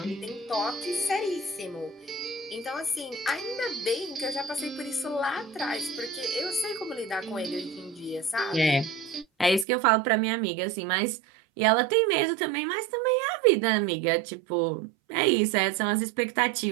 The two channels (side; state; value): left; drops out; at 9.7 s